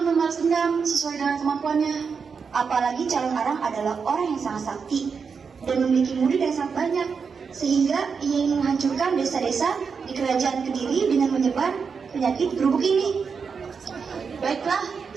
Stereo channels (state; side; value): quieter; left; 5.7 dB